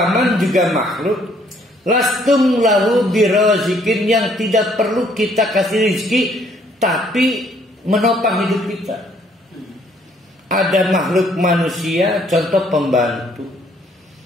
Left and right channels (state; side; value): normal; both; correlation 0.64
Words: juga makhluk. Lastum lahu birazikin, yang tidak perlu kita kasih rezeki, tapi menopang hidup kita. Ada makhluk manusia, contoh pembantu,